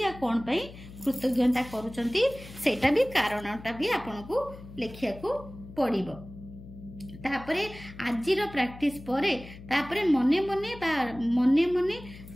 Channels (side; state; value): left; noise; hum, 16 dB below the sound